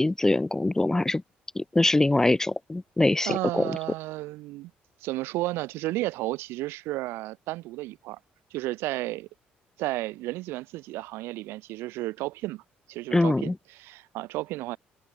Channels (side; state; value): both; normal; correlation 0.79